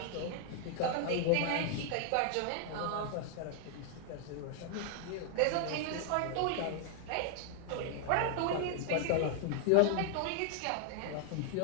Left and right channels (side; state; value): both; different; correlation 0.00